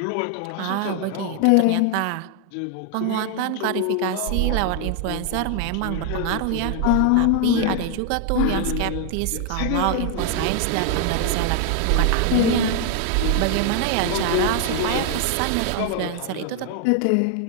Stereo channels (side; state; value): both; different; correlation 0.00